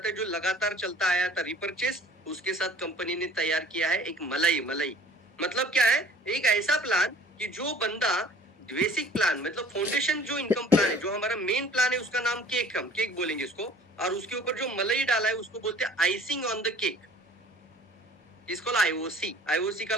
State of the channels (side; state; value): both; normal; correlation 0.51